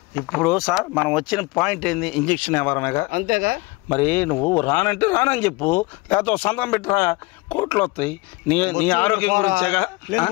ఇప్పుడు సార్ మనం వచ్చిన పాయింట్ ఏంది? ఇంజక్షన్ ఎవరనగా అంతేగా. మరి నువ్వు రానంటే రానని చెప్పు, లేకపోతే సంతకం పెట్టరా, కోట్లు వస్తాయి. నీ ఆరోగ్యం గురించేగా.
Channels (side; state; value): right; quieter; 23.7 dB